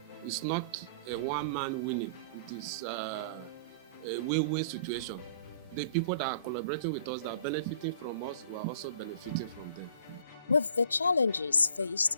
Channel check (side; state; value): both; inverted; correlation -0.50